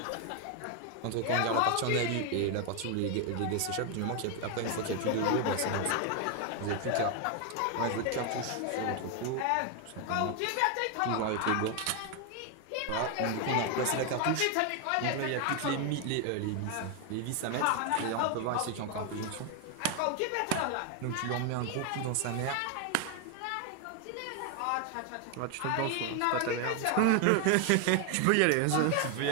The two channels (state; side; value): different; both; correlation 0.01